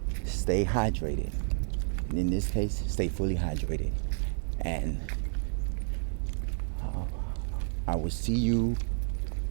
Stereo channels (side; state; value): left; silent; 57 dB below the other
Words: stay hydrated. And in this case, stay fully hydrated. And I will see you